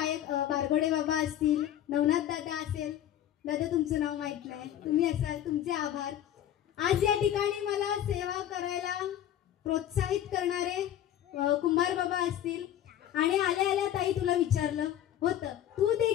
बारगोडे बाबा असतील, नवनाथ दादा असेल. दादा तुमचं नाव माहित नाही, तुम्ही असाल, तुमचे आभार. आज या ठिकाणी मला सेवा करायला प्रोत्साहित करणारे कुंभार बाबा असतील. आणि आल्या आल्या ताई तुला विचारलं होतं, तू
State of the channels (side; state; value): right; quieter; 11.3 dB